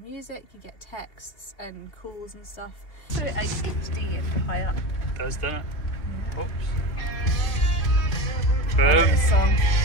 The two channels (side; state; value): right; late; 2.8 ms